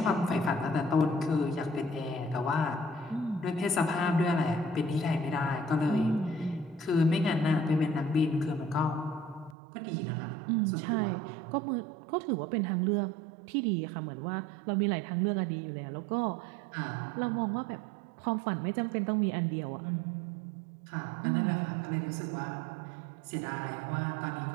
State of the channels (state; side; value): drops out; left; at 9.6 s